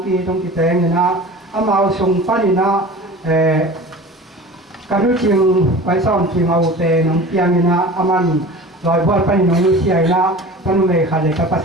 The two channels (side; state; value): both; normal; correlation 0.38